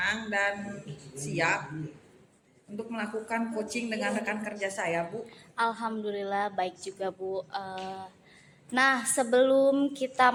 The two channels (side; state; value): both; identical; correlation 1.00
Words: dan siap untuk melakukan coaching dengan rekan kerja saya Bu. Alhamdulillah baik juga Bu. Nah, sebelum kita